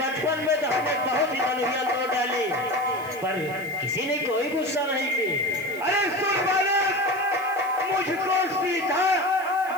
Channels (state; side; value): noise; right; hiss, 19 dB below the sound